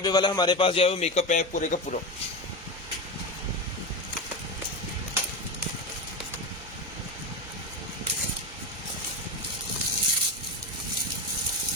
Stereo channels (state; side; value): normal; both; correlation 0.20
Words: वाला हमारे पास जो है वो मेकअप पैक पूरे का पूरा,